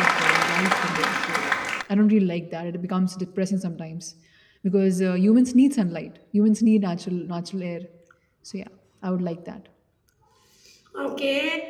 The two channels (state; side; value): identical; both; correlation 1.00